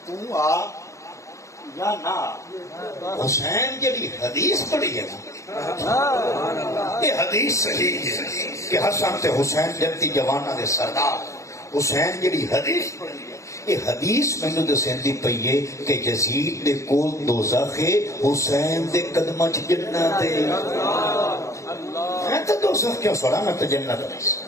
آ یا نہ، حسین جڑی حدیث پڑھی ہے یہ حدیث صحیح ہے کہ حسن تے حسین جنتی جواناں دے سردار، حسین جڑی حدیث پڑھی ہے یہ حدیث مینوں دسیندی پئی ہے کہ یزید دے کول دوزخ ہے، حسین دے قدماں چ جنت ہے۔ میں تے دوزخ کیوں سڑا، میں تے جنت نہیں۔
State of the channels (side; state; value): right; late; 0.15 ms